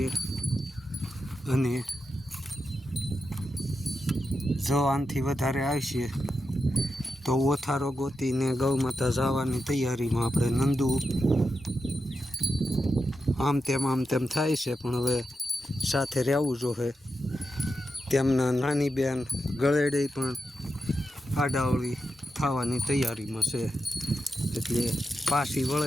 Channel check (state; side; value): normal; both; correlation 0.88